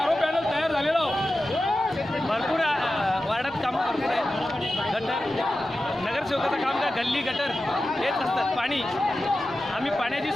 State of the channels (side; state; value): both; normal; correlation 0.93